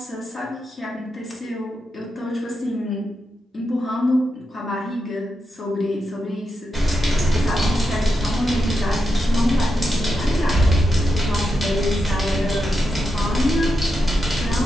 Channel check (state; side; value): normal; both; correlation 0.87